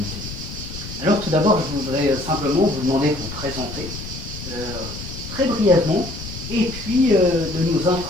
Alors tout d'abord, je voudrais simplement vous demander de vous présenter très brièvement, et puis de nous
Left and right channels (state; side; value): noise; left; rumble, 10 dB below the sound